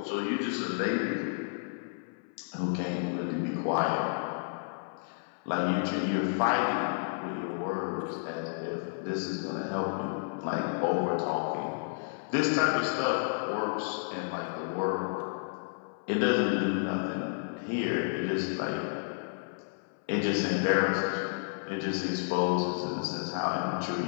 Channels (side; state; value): right; silent; 57 dB below the other